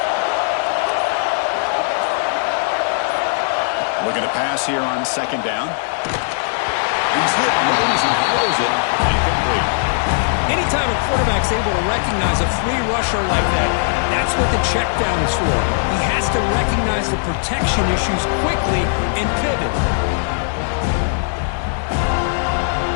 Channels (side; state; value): right; silent; digital silence